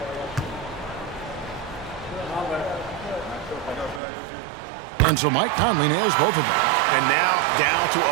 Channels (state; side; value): drops out; left; at 4.0 s